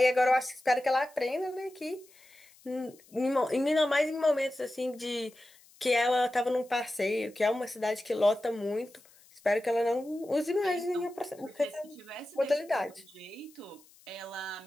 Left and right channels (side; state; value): left; noise; hiss, 27 dB below the sound